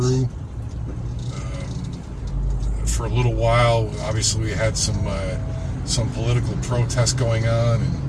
For a little while, obviously, we had some political protests going on, and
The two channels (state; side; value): identical; both; correlation 1.00